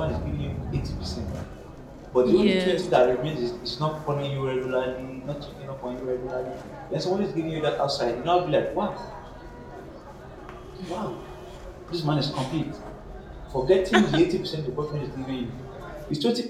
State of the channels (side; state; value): both; identical; correlation 1.00